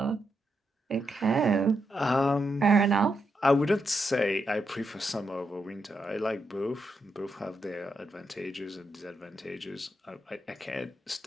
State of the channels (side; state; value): both; normal; correlation 0.83